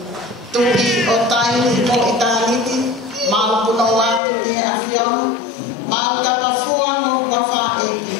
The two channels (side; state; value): right; drops out; at 4.2 s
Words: tuhi o tai, ni mo I tāniti, mau puno watu ni a Fiona, mau tapafua mo wafa eki,